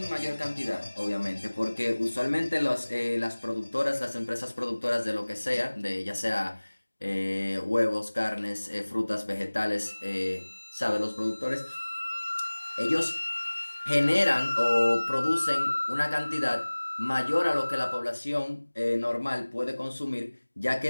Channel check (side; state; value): both; inverted; correlation -1.00